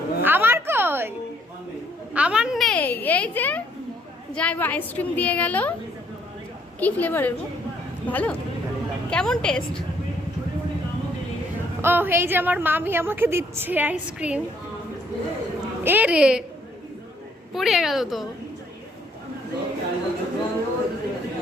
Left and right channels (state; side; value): normal; both; correlation 0.67